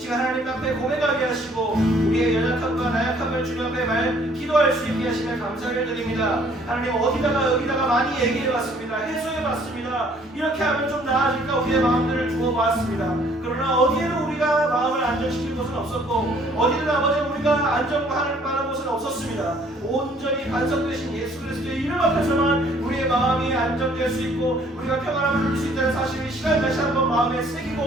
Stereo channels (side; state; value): both; normal; correlation 0.60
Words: 하나님 앞에 고백하게 하시고 우리의 연약함과 나약함을 주님 앞에 기도할 수 있게 하시며 감사를 드립니다. 하나님 어디다가 여기다가 많이 얘기해봤습니다. 해소해봤습니다. 이렇게 하면 좀 나아질까 우리의 마음들을 두어 보았습니다. 그러나 어디에는 우리가 마음을 안정시킬 곳은 없었고 어디든 아버지 우리가 안정할 만한 곳은 없었습니다. 온전히 반석되신 예수 그리스도의 이름 앞에서만 우리의 마음이 안정될 수 있고 우리가 평안함을 누릴 수 있다는 사실을 시간 다시 한번 마음에